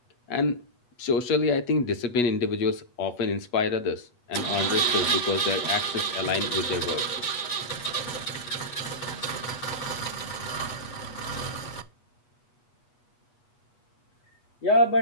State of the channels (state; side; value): late; right; 8.3 ms